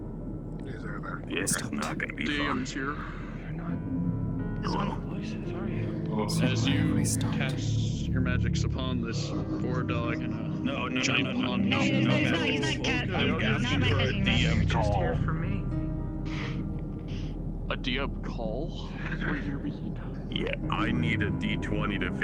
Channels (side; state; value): both; identical; correlation 1.00